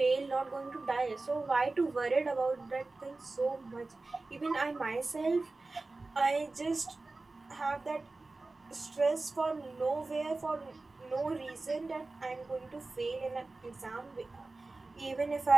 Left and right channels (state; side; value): quieter; left; 3.4 dB